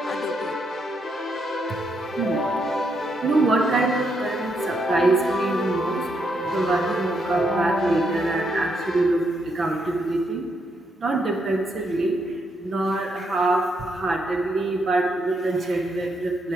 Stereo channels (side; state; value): both; normal; correlation 0.78